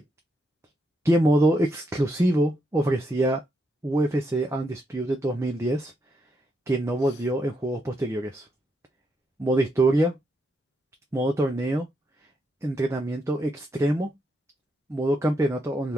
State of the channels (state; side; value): normal; both; correlation 0.80